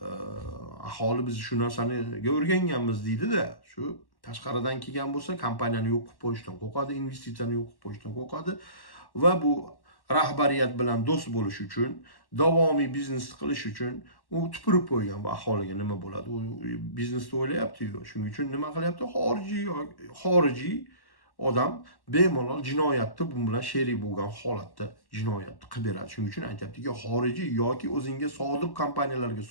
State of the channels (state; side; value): late; right; 1.1 ms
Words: aholi biz shu narsani o'rganganmiz deydi-da, shu tashqaridan kelgan bo'lsa, kompaniyani yo'q qilib qo'yishdan qo'rqadi, investitsiyani yo'q qilib qo'yishdan qo'rqadi va bu rahbariyat bilan do'st bo'lish uchun, davomiy biznes qilish uchun u tupurib qo'ygan bu aholiga nima bo'ladi? U biznesni o'ylayapti-yu. Shuning uchun nima qilyapti? Xorijiy odam bemalol jinoyatni bu bilan sherik bo'lgan holatda jinoyatni qilib beradi. Shuning uchun aytayaptiki, xorijiy yoki o'zingga sodiq kompaniyalarga